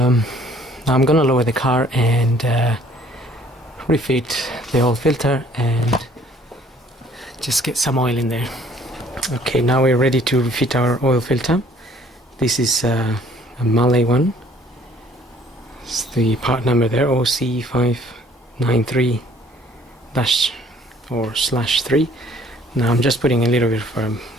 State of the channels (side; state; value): both; normal; correlation 0.58